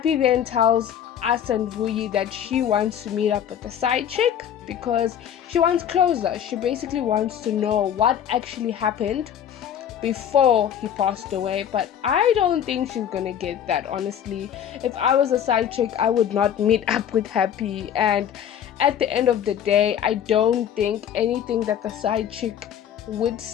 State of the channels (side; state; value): right; quieter; 9.4 dB